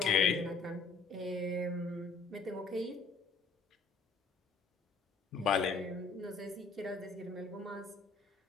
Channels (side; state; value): right; quieter; 4.2 dB